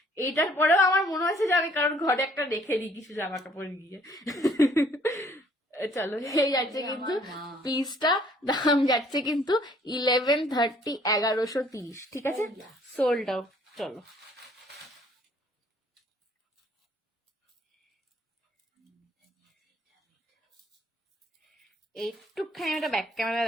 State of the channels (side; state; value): both; normal; correlation 0.60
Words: এইটার পরেও আমার মনে হচ্ছে যে আমি কারোর ঘরে একটা রেখে দিই কিছু জামা কাপড় গিয়ে। চলো, এই যাচ্ছে কিন্তু পিসটা, দাম যাচ্ছে কিন্তু 1130, 1130। ঠিক আছে, সোল্ড আউট। চলো, একটুখানি একটা ব্যাক ক্যামেরা